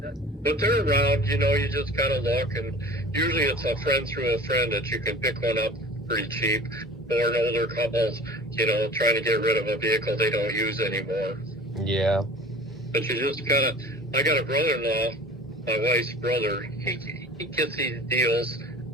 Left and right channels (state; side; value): normal; both; correlation 0.41